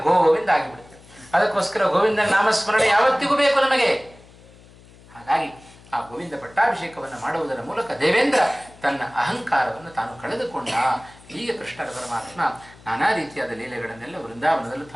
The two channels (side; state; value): left; noise; hum, 24 dB below the sound